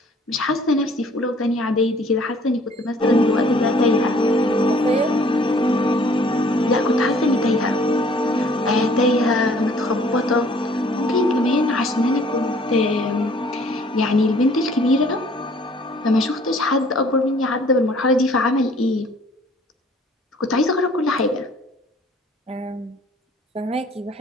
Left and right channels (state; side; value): normal; both; correlation 0.56